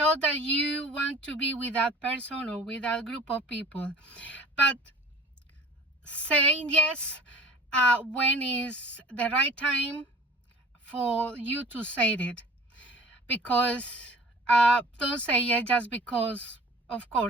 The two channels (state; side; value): normal; both; correlation 0.45